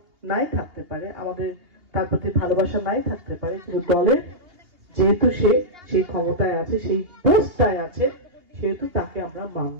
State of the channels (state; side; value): late; left; 2.8 ms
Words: নাই থাকতে পারে, আমাদের তার প্রতি ভালোবাসা নাই থাকতে পারে, কিন্তু দলের যেহেতু সে সেই ক্ষমতায় আছে, সেই পোস্টটায় আছে, সেহেতু তাকে আমরা